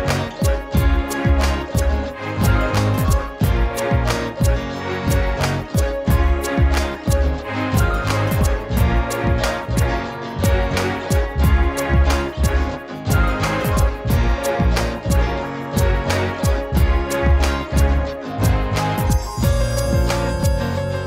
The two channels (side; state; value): both; identical; correlation 1.00